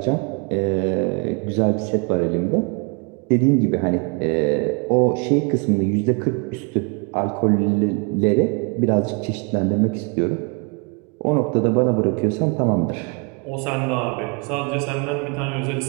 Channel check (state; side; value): quieter; left; 33.9 dB